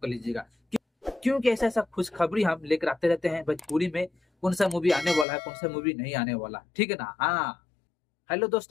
लीजिएगा, क्योंकि ऐसा ऐसा खुशखबरी हम लेकर आते रहते हैं भोजपुरी में। कौन सा मूवी आने वाला है, कौन सा मूवी नहीं आने वाला, ठीक है ना। हाँ, हेलो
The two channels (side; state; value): right; drops out; at 5.2 s